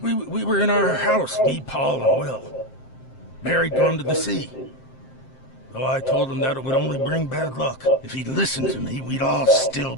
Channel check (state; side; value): late; right; 7.6 ms